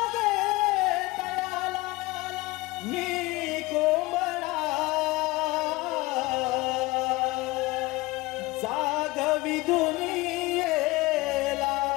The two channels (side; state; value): right; quieter; 21.0 dB